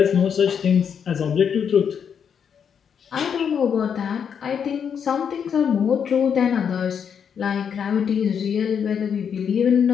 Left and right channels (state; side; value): quieter; right; 7.4 dB